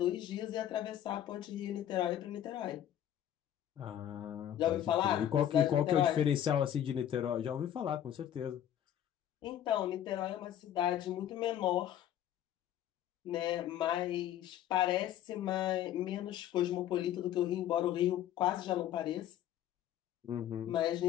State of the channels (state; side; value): quieter; right; 11.0 dB